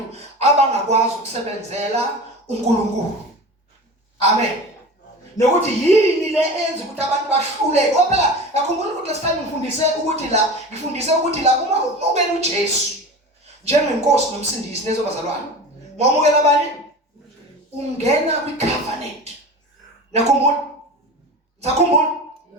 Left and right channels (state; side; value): normal; both; correlation 0.33